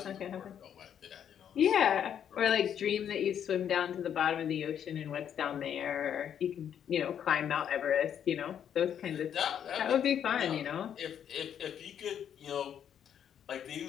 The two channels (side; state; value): right; quieter; 9.0 dB